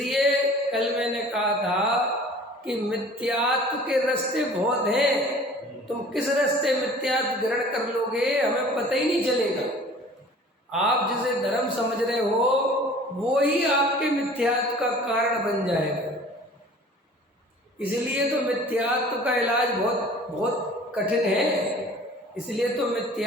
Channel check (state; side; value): normal; both; correlation 0.47